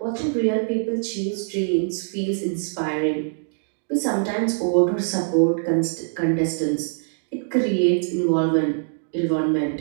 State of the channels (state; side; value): silent; left; digital silence